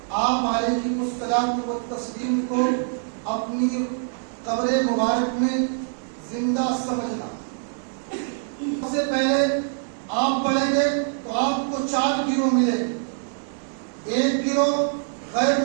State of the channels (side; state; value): left; silent; digital silence